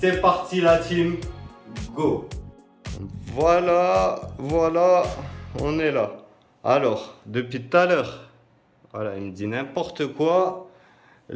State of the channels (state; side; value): identical; both; correlation 1.00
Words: parti la team, go! Voilà, on est là. Alors, depuis tout à l'heure, voilà, il me dit n'importe quoi.